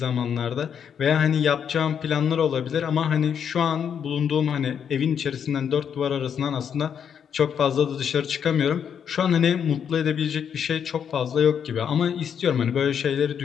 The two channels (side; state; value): right; quieter; 7.9 dB